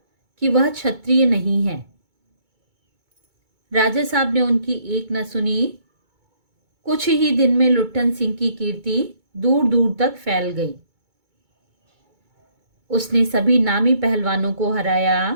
कि वह क्षत्रिय नहीं है। राजा साहब ने उनकी एक न सुनी। कुछ ही दिन में लुट्ठन सिंह की कीर्ति दूर दूर तक फैल गई। उसने सभी नामी पहलवानों को हराया।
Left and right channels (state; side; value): late; left; 2.2 ms